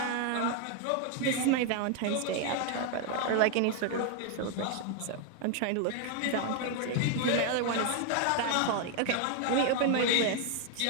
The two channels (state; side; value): different; both; correlation 0.01